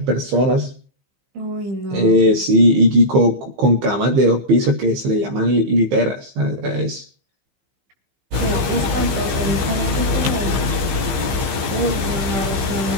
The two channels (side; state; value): left; late; 15 ms